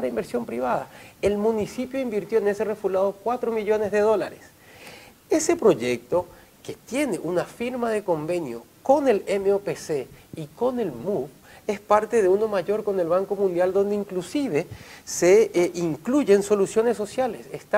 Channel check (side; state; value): both; identical; correlation 1.00